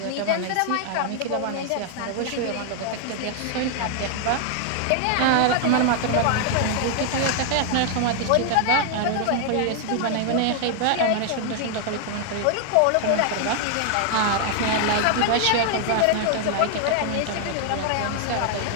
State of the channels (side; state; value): both; different; correlation 0.00